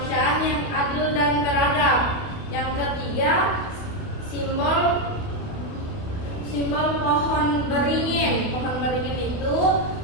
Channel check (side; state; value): right; late; 28 ms